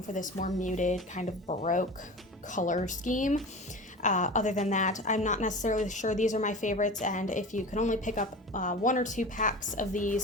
for this more muted kind of Baroque color scheme. Other than that, I'm not necessarily sure these are my favorites, and if you can only pick up 1 or 2 packs of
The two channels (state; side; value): normal; both; correlation 0.33